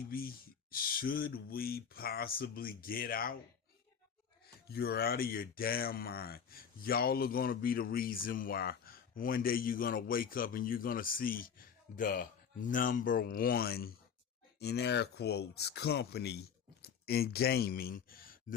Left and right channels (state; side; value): quieter; right; 7.2 dB